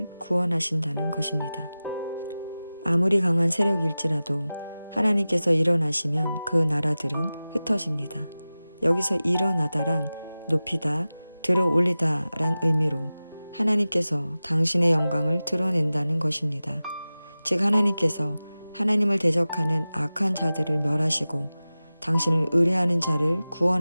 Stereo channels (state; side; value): inverted; both; correlation -0.96